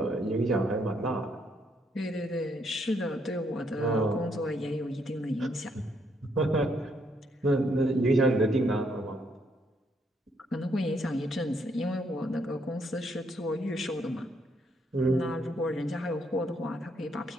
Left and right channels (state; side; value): normal; both; correlation 0.73